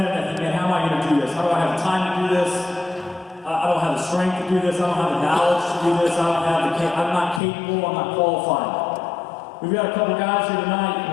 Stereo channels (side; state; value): right; drops out; at 7.4 s